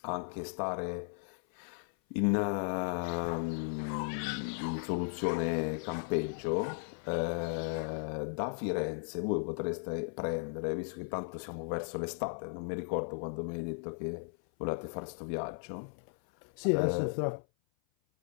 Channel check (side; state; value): right; silent; 54 dB below the other